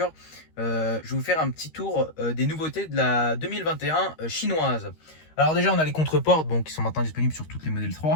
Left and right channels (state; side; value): late; right; 13 ms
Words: je vais vous faire un petit tour des nouveautés de la 2021 chinoise. Alors déjà, on a les contreportes qui sont maintenant disponibles sur toutes les Model